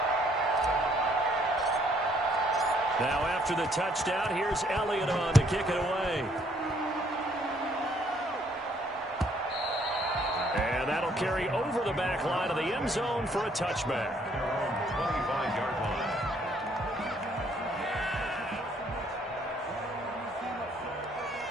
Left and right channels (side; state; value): both; normal; correlation 0.65